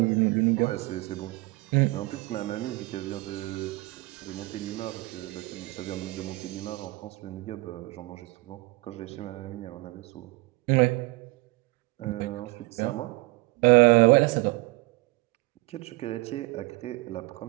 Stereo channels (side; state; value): left; quieter; 23.3 dB